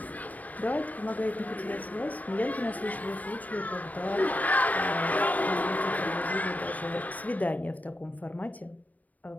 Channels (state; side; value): late; right; 0.075 ms